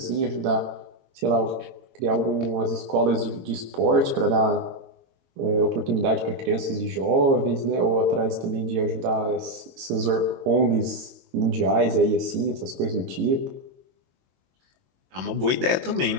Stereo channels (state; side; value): late; left; 22 ms